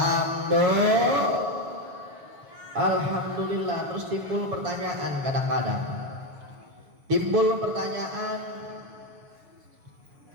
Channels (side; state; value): left; late; 7.1 ms